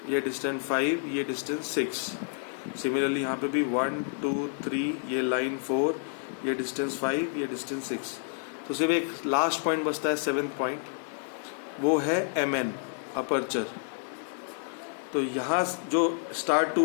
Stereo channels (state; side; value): silent; right; 58 dB below the other